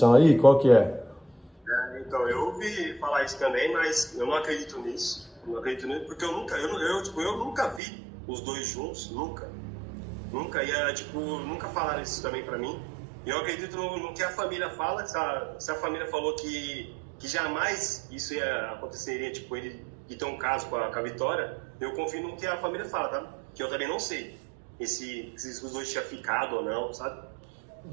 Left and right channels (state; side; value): drops out; left; at 7.8 s